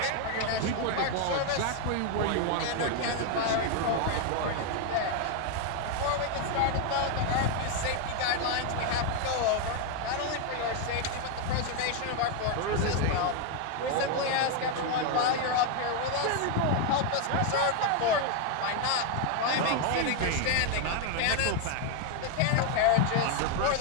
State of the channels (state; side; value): different; both; correlation 0.01